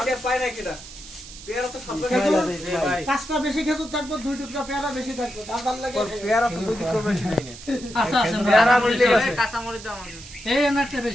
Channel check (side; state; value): right; noise; hiss, 16 dB below the sound